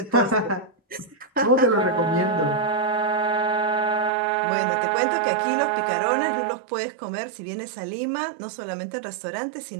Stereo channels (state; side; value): drops out; left; at 4.1 s